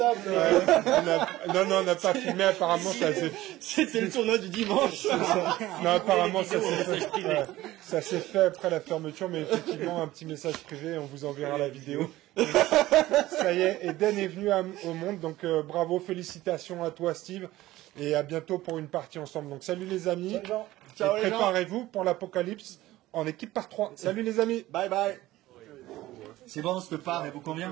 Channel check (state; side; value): quieter; left; 16.5 dB